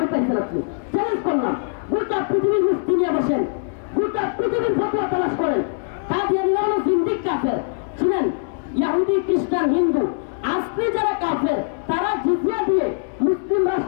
পাইছেন আপনি? চ্যালেঞ্জ করলাম, গোটা পৃথিবীর মুফতি নিয়ে বসেন, গোটা পৃথিবীর ফতোয়া তালাশ করেন। কাদিয়ানীরা হলো জিন্দিক কাফের। শুনেন, ইহুদি, খ্রিস্টান, হিন্দু আজকে যারা কাফের, তারা জিজিয়া দিয়ে মুসলিম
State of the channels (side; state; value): right; silent; digital silence